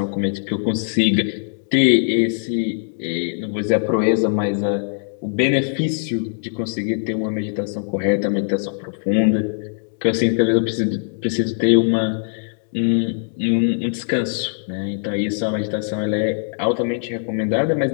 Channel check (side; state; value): right; silent; digital silence